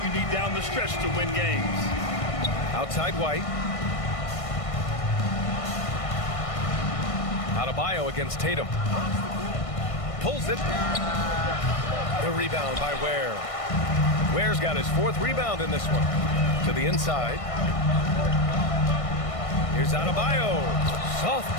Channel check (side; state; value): right; late; 1.6 ms